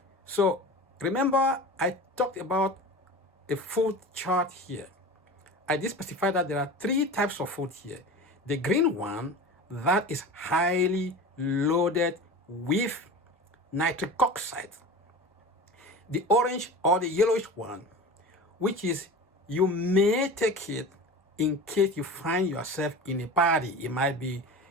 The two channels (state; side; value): normal; both; correlation 0.33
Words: So remember, I talked about a food chart here. I did specify that there are 3 types of food here. The green one, that is highly loaded with nitric oxide. The orange or the yellowish one, which is you may take it in case you find yourself in a party. It might be